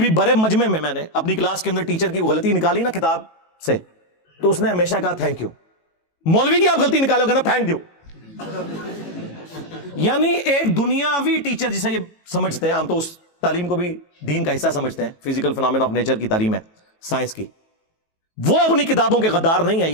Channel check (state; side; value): late; right; 18 ms